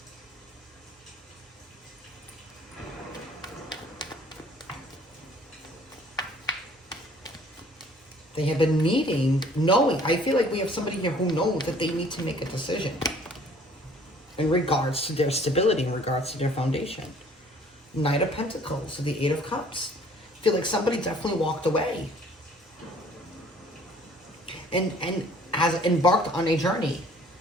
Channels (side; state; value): both; normal; correlation 0.55